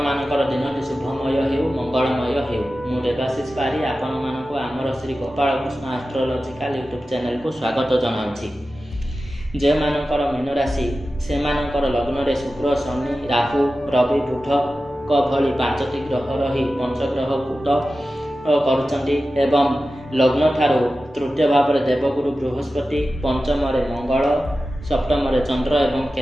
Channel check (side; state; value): both; normal; correlation 0.94